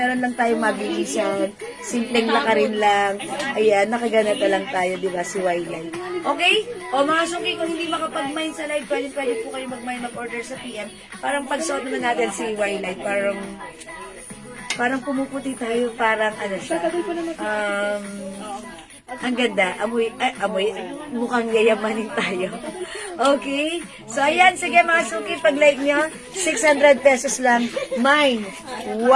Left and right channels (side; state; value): both; identical; correlation 1.00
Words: lang tayo mabilisan, simpleng lakarin lang. Ayan, nakaganata lang tayo, di ba, si Wildlife. Okay? O mga suki, kung hindi makapag-mine sa live, pwede po kayo mag-mine, mag-order sa PM. Parang pag-suot naman natin si Wildlife, parang pumuputi tayo, parang ano siya. Ang ganda. Amoy, mukhang yayamanin tayo. Okay? So, ayan. Sige, mga suki, pag-like nyo, 600 pesos lang. Mine,